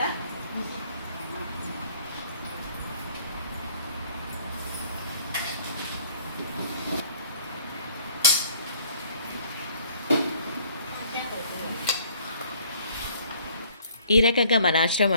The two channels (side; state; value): both; inverted; correlation -0.59